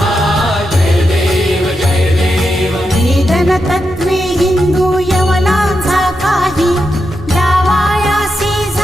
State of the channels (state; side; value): normal; both; correlation 0.86